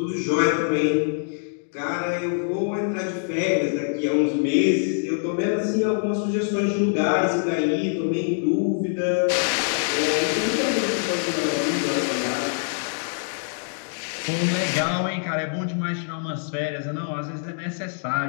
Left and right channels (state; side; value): silent; right; digital silence